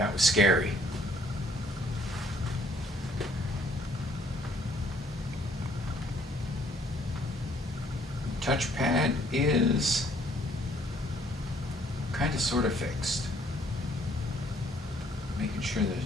was scary. Touchpad is kind of sort of fixed. Making sure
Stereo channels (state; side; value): normal; both; correlation 0.63